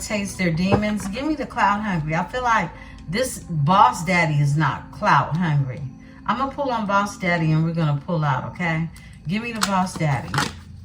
their demons. Give me the clout hungry. I feel like this boss daddy is not clout hungry. I'm going to pull on boss daddy and we're going to pull out, okay? Give me the boss daddy.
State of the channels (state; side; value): identical; both; correlation 1.00